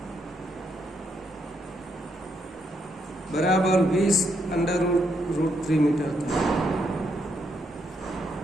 બરાબર 20√3 મીટર.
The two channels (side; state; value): both; normal; correlation 0.77